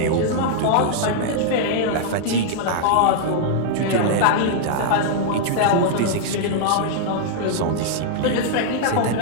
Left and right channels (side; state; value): both; different; correlation -0.01